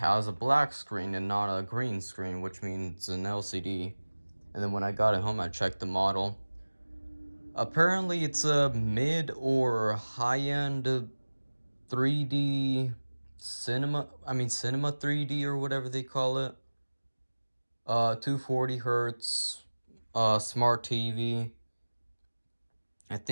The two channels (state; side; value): inverted; both; correlation -1.00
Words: a black screen and not a green screen, which means an LCD. And then when I got it home, I checked the model. Apparently, it's a mid or high-end 3D cinema 3D or whatever they call it. 240 hertz, smart TV. I